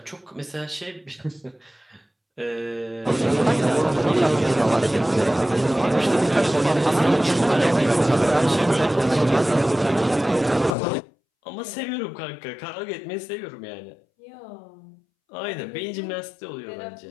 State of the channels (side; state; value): right; drops out; at 10.8 s